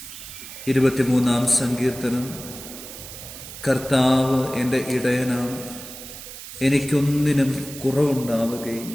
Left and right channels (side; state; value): right; noise; hiss, 13 dB below the sound